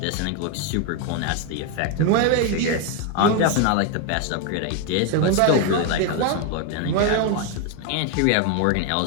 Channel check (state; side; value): different; both; correlation 0.01